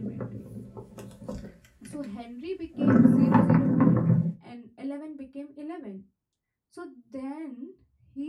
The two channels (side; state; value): both; identical; correlation 1.00